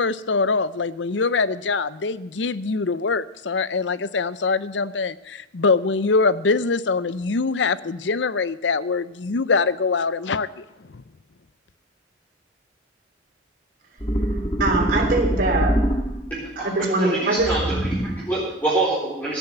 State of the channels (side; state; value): both; normal; correlation 0.08